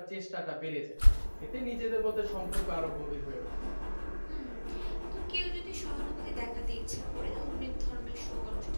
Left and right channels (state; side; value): inverted; both; correlation -1.00